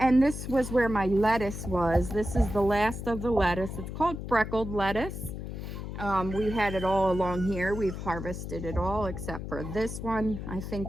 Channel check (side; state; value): left; noise; hum, 7 dB below the sound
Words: this was where my lettuce was. This is the last of the lettuce. It's called freckled lettuce. We had it all along here. We've harvested it all except for this one. I